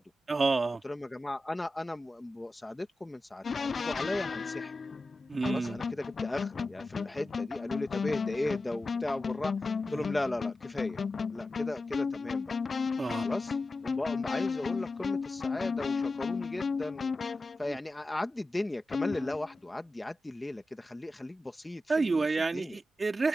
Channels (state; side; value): normal; both; correlation 0.93